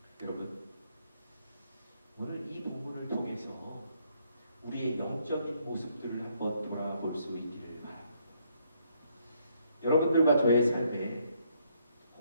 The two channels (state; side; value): inverted; both; correlation -0.71